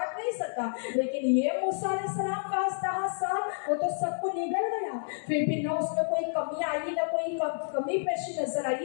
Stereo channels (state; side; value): silent; right; digital silence